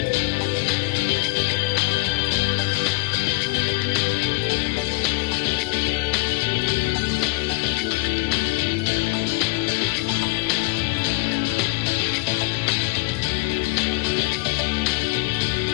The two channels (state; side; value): quieter; right; 25.3 dB